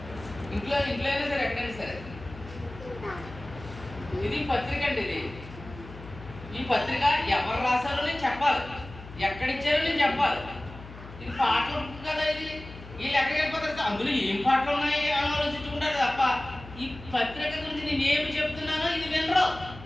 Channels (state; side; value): noise; left; hum, 16 dB below the sound